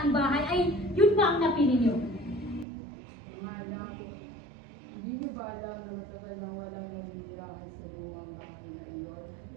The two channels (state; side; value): drops out; left; at 2.7 s